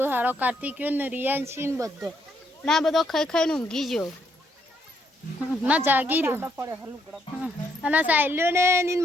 હારો કાર્તિક્યો ને રિયાંશી ને બધો ના બધો ખાઈ ખાઈને ઊંઘી ગયો. ના જાગી રહ્યો. અને સાયલ્યો ને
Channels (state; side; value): normal; both; correlation 0.74